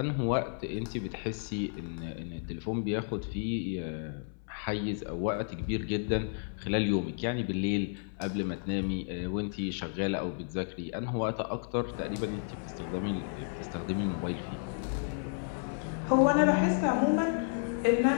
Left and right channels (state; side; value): silent; right; 56 dB below the other